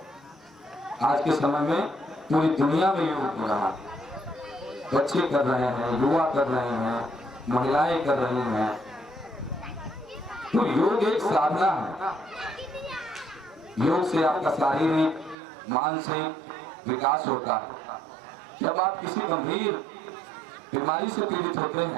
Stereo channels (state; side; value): drops out; left; at 15.4 s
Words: आज के समय में पूरी दुनिया में योग हो रहा है, बच्चे कर रहे हैं, युवा कर रहे हैं, महिलाएं कर रही हैं। तो योग एक साधना है। योग से आपका शारीरिक, मानसिक विकास होता है। जब आप किसी गंभीर बीमारी से पीड़ित होते